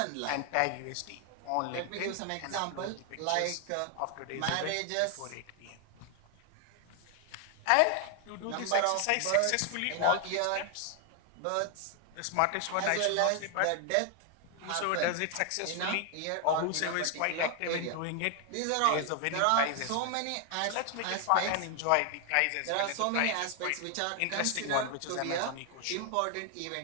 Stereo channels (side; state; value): both; different; correlation 0.00